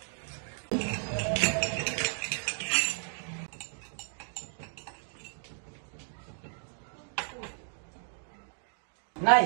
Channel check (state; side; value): silent; left; 55 dB below the other